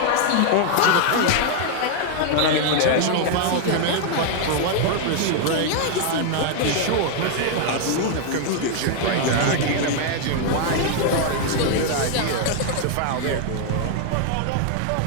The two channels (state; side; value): different; both; correlation 0.00